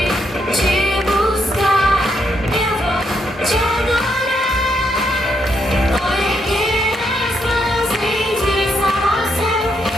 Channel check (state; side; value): normal; both; correlation 0.77